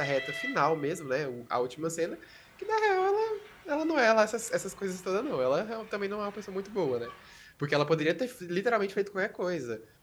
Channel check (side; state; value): both; identical; correlation 1.00